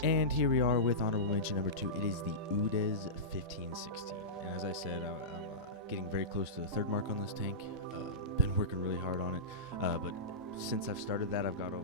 And here we are with honorable mention number 2. It is the UDES 1516. And as I said, I'm getting very close to the 3rd mark on this tank. Been working really hard on it. But since I've started that, I've got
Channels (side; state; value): both; normal; correlation -0.17